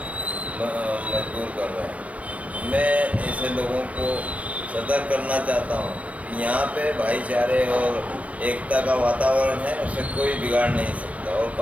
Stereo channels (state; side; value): late; left; 0.066 ms